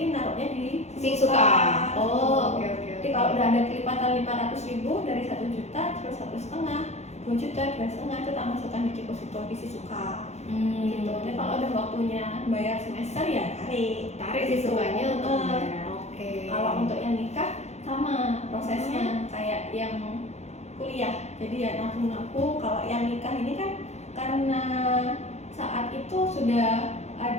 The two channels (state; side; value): late; right; 0.32 ms